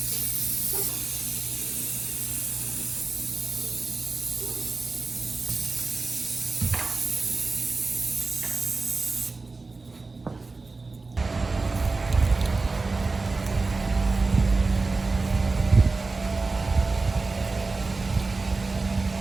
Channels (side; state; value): left; quieter; 3.8 dB